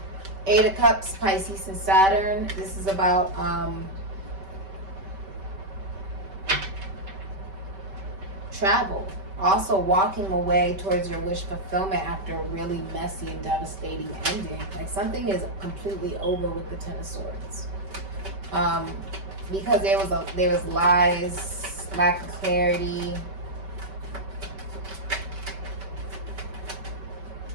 Eight of Cups, Pisces and Saturn. This is about travel. Also walking away towards your wish fulfillment after a really messy and devastating ending. Like something is completely over with the Ten of Swords. Because there was lies, lack of clarity.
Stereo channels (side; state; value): left; late; 5.2 ms